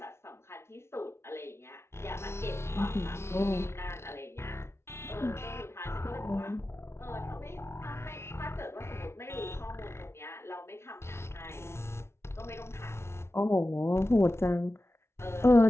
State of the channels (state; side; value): late; right; 0.13 ms